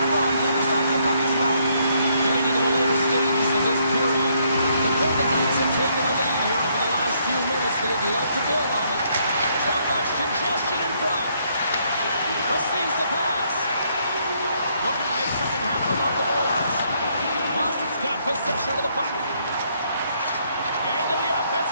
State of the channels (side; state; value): both; inverted; correlation -0.71